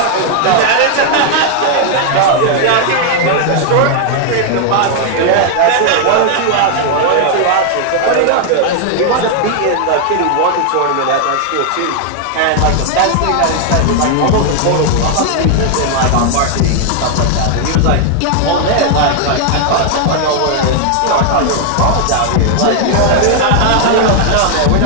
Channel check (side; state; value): both; different; correlation 0.00